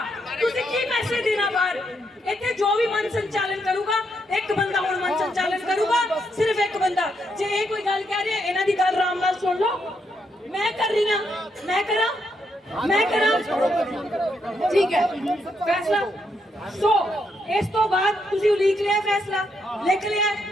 ਤੁਸੀਂ ਕੀ ਮੈਸੇਜ ਦੇਣਾ ਬਾਹਰ? ਇੱਥੇ ਜੋ ਵੀ ਮਨ ਸੰਚਾਲਨ ਕਰੂਗਾ, ਇੱਕ ਬੰਦਾ ਹੁਣ ਮਨ ਸੰਚਾਲਨ ਕਰੂਗਾ, ਸਿਰਫ ਇੱਕ ਬੰਦਾ। ਜੇ ਇਹ ਕੋਈ ਗੱਲ ਕਹਿ ਰਹੇ ਇਹਨਾਂ ਦੀ ਗੱਲ ਆਰਾਮ ਨਾਲ ਸੁਣ ਲਓ। ਮੈਂ ਕਰ ਰਹੀ ਹਾਂ, ਮੈਂ ਕਰਾਂ ਠੀਕ ਹੈ ਫੈਸਲਾ। ਸੋ ਇਸ ਤੋਂ ਬਾਅਦ ਤੁਸੀਂ ਉਲੀਕ ਲਿਆ ਫੈਸਲਾ, ਲਿਖ ਲਿਆ,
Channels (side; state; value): both; normal; correlation 0.78